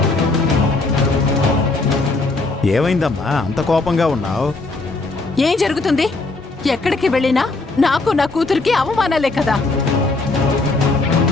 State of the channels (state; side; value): quieter; right; 3.4 dB